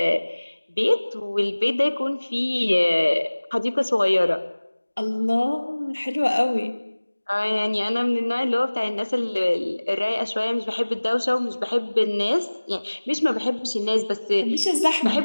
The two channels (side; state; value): both; inverted; correlation -1.00